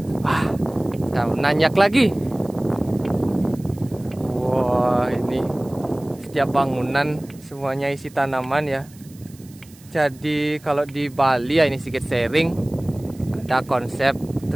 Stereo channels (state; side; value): noise; right; hiss, 25 dB below the sound